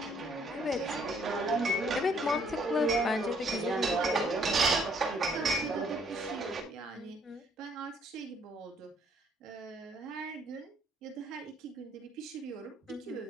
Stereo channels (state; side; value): normal; both; correlation 0.65